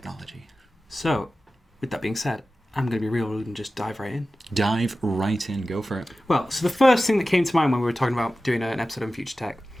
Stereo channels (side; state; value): both; normal; correlation 0.95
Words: So, with that being said, I'm going to be real rude and just dive right in. Dive right in. Go for it. Well, so the first thing that came to mind when we were talking about doing an episode on future tech